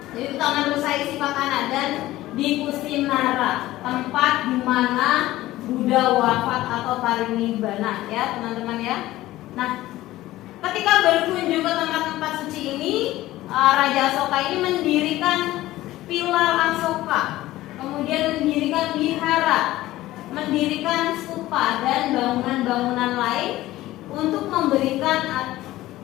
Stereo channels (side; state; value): right; quieter; 16.2 dB